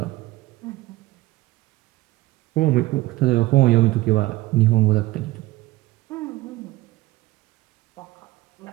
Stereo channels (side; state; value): left; quieter; 18.4 dB